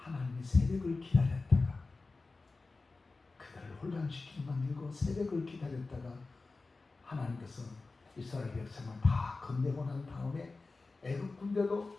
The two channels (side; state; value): right; quieter; 3.7 dB